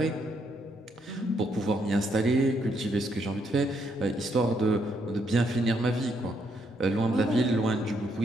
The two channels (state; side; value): normal; both; correlation 0.74